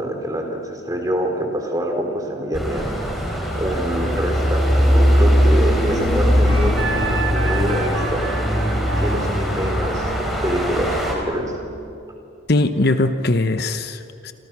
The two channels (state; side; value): normal; both; correlation 0.76